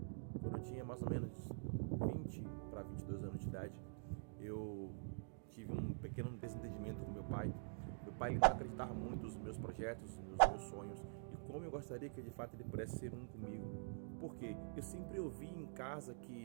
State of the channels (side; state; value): left; silent; digital silence